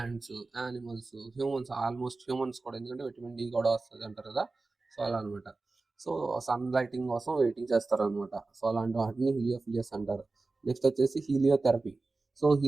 animals, humans, almost humans కూడా, ఎందుకంటే విటమిన్ డి కూడా వస్తుంది అంటారు కదా, సో అలా అనమాట. సో సన్ లైటింగ్ కోసం వెయిటింగ్ చేస్తారనమాట. సో అలాంటి వాటిని హీలియోఫిలియస్ అంటారు. నెక్స్ట్ వచ్చేసి హీలియోథెరపీ. సో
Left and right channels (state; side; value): quieter; left; 3.6 dB